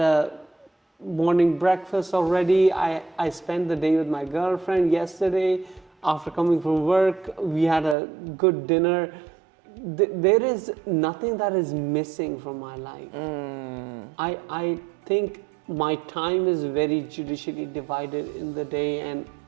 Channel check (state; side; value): drops out; left; at 8.0 s